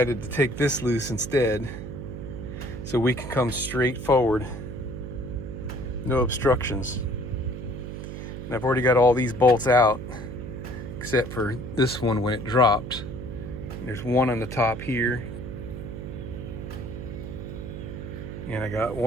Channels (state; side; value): noise; right; hum, 8 dB below the sound